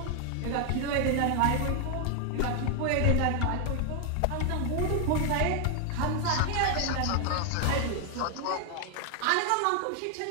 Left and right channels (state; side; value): different; both; correlation 0.00